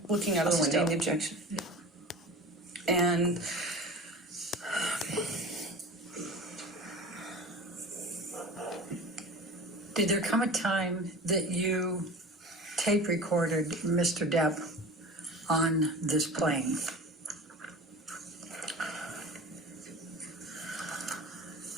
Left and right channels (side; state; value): both; normal; correlation 0.36